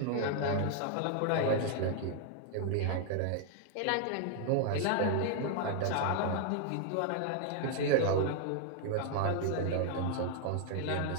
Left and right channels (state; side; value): different; both; correlation 0.00